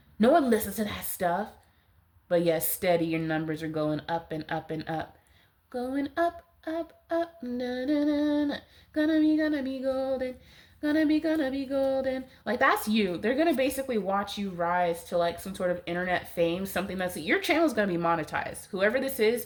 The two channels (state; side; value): identical; both; correlation 1.00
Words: No one listens to that stuff. But yes, steady, your numbers are going up and up and up. Going up, up, up, na na na na. Gonna be golden. Gonna be golden. Like, that's you. They're gonna basically watch you rise to like some sort of internet fame, something that's, your channel's gonna be monetized. Whoever this